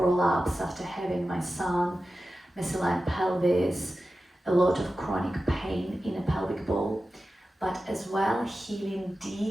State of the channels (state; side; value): normal; both; correlation 0.93